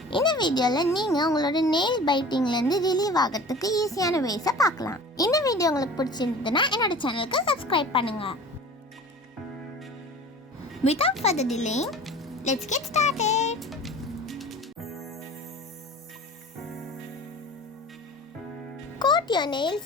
இந்த வீடியோல நீங்க உங்களோட nail biting ல இருந்து ரிலீவ் ஆகிறதுக்கு ஈஸியான ways பார்க்கலாம். இந்த வீடியோ உங்களுக்கு பிடிச்சிருந்ததுன்னா என்னோட சேனலுக்கு subscribe பண்ணுங்க. Without further delay, let's get started. Coat your nails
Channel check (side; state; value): both; normal; correlation 0.41